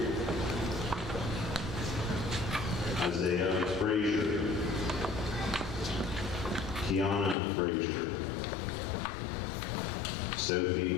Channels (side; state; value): right; drops out; at 7.4 s